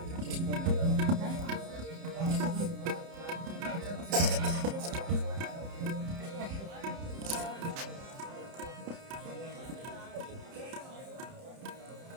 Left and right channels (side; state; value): left; late; 30 ms